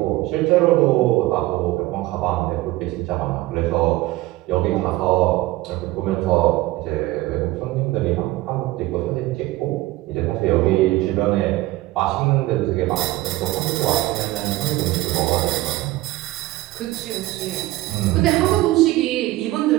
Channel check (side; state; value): left; quieter; 18.0 dB